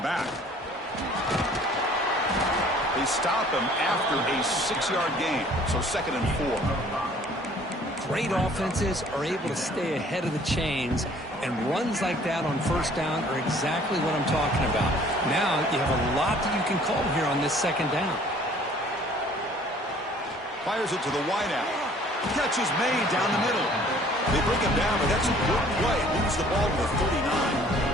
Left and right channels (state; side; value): normal; both; correlation 0.55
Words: They stop him after a 6-yard gain, so 2nd and 4. Great offenses are able to stay ahead of the chains, and runs like that on first down are exactly what I'm talking about. Now you have a lot that you can call here on this 2nd down. Fires it to the wideout. Catch is made down the middle. They bring him down, but that's a good play. Moves the ball to the